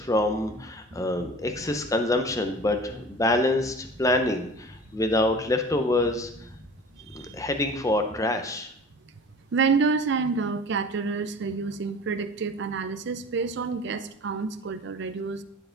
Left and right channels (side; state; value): both; normal; correlation 0.40